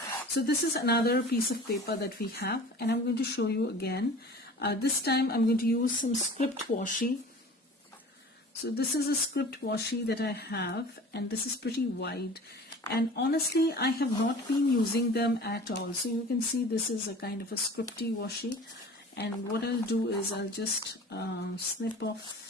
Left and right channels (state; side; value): normal; both; correlation 0.42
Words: so this is another piece of paper that we have, and I'm going to show you again. This time I'm going to use some script washi. So this is a script washi that I have, and this is pretty wide, and honestly I have not been using them at all. So you can see this is a kind of a scripty washi, and what I'll do is I'll just snip